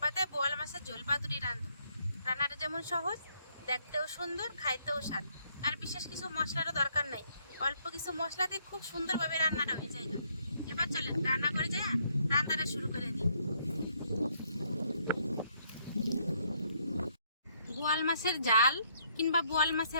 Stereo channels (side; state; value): both; inverted; correlation -0.70